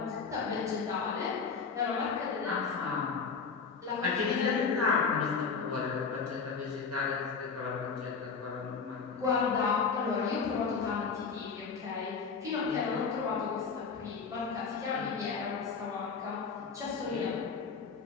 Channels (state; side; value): quieter; right; 5.4 dB